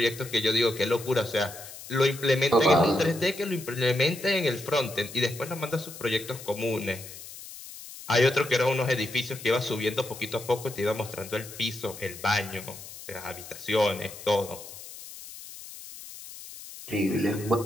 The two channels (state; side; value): noise; left; hiss, 14 dB below the sound